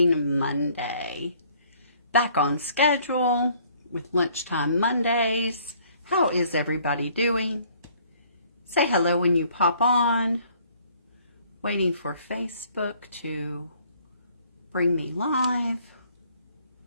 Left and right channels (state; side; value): inverted; both; correlation -0.60